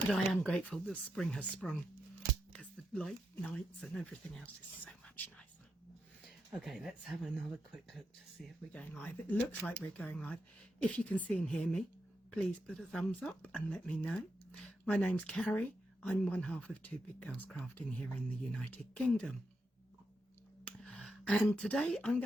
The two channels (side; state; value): both; normal; correlation 0.84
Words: I am grateful that spring has sprung because the light nights and everything else is so much nicer. Okay, let's have another quick look to see if we're going live. It looks like we're going live. If you can see and hear me, please put a thumbs up and let me know. My name's Cary. I'm one half of Two Big Girls Crafting here in the United Kingdom. And today I'm